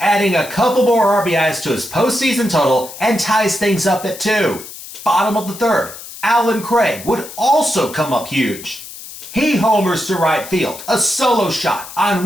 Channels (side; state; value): left; noise; hiss, 14 dB below the sound